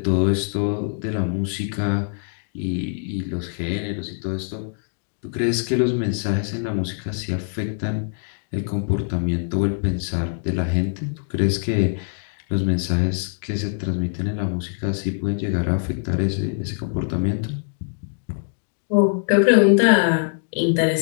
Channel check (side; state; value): right; silent; 63 dB below the other